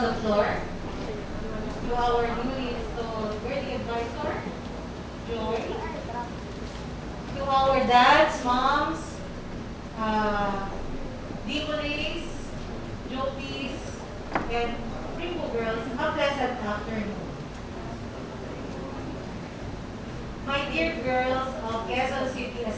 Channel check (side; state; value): both; identical; correlation 1.00